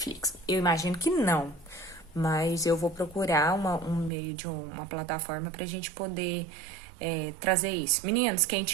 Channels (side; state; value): left; drops out; at 4.1 s